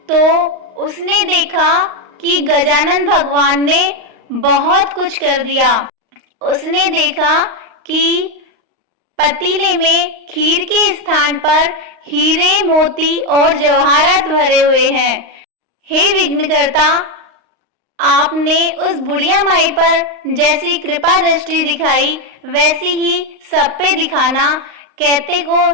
तो उसने देखा कि गजानन भगवान ने बहुत कुछ कर दिया। उसने देखा कि पतीले में खीर के स्थान पर हीरे, मोती और जवाहरात भरे हुए हैं। हे विघ्नकर्ता, आपने उस बुढ़िया माई पर जैसी कृपा दृष्टि दिखाई वैसी ही सब पे दिखाना, कहते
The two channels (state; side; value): late; left; 38 ms